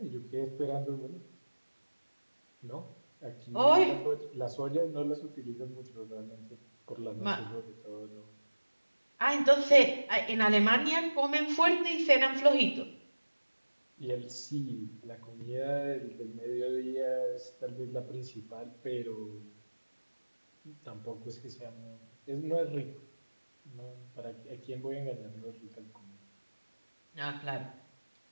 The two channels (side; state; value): both; inverted; correlation -1.00